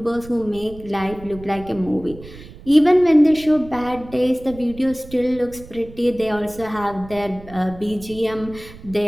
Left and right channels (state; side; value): noise; right; rumble, 17 dB below the sound